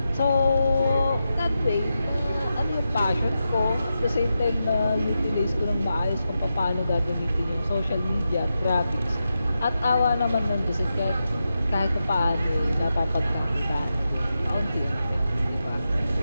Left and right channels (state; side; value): inverted; both; correlation -0.88